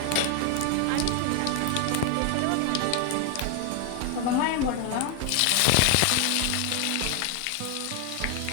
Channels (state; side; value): different; both; correlation 0.01